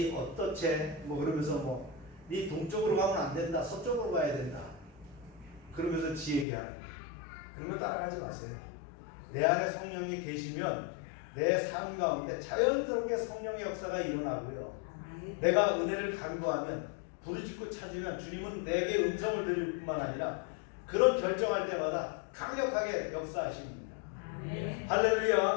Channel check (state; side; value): drops out; right; at 6.5 s